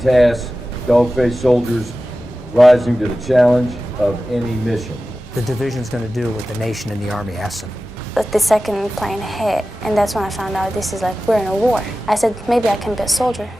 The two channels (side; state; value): both; normal; correlation 0.95